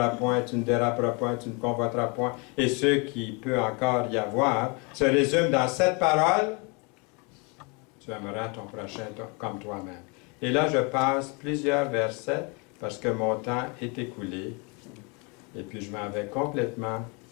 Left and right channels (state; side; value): quieter; right; 31.3 dB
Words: point, tu ne déraperas point, tu ne convoiteras point, et ce qui peut encore y avoir, se résume dans cette parole, tu aimeras ton prochain comme toi-même. Et là, je passe plusieurs versets, parce que mon temps est écoulé, et puis je m'en vais complètement